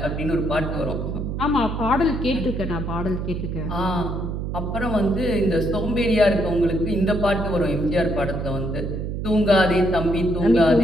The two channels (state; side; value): noise; right; hum, 4 dB below the sound